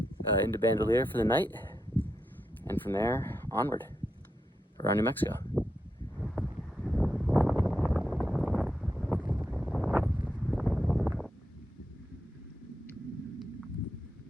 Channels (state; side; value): normal; both; correlation 0.84